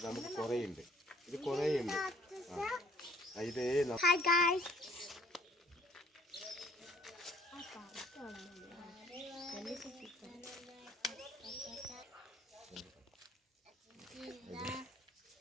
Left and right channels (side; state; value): both; normal; correlation 0.58